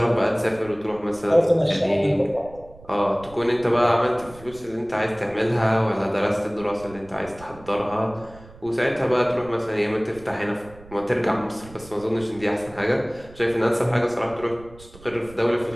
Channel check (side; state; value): right; noise; rumble, 21 dB below the sound